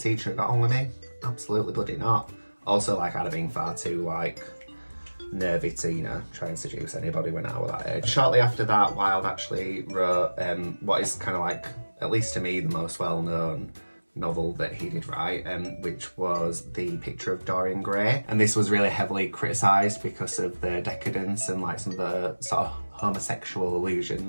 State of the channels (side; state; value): both; inverted; correlation -1.00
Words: have got on with me? Absolutely bloody not. Also, like, I'd have been far too like nervy to, you know, try and seduce anybody when I was that age. Shortly after that, Wilde actually wrote what is kind of like, at least to me, the most well-known novel that he did write, which was The Picture of Dorian Gray. And this was really heavily criticised because of the decadence and like some of the sort of homosexual